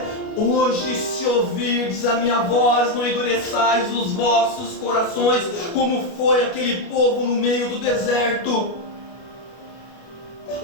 hoje, se ouvirdes a minha voz, não endureçais os vossos corações, como foi aquele povo no meio do deserto.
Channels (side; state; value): right; late; 30 ms